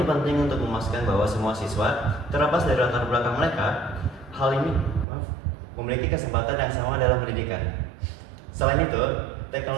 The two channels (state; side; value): drops out; left; at 5.1 s